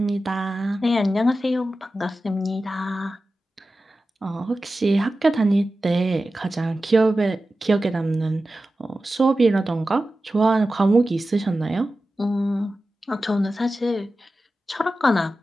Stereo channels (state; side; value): normal; both; correlation 0.94